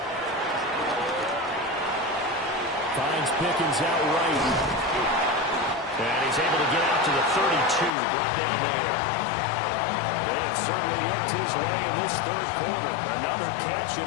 Finds Pickens out right. And he's able to get out to the 32, brought down there. They have certainly looked his way in this third quarter. Another catch, and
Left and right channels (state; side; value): drops out; right; at 7.9 s